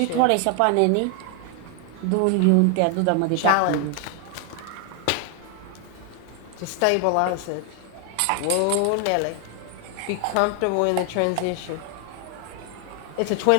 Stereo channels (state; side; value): different; both; correlation 0.00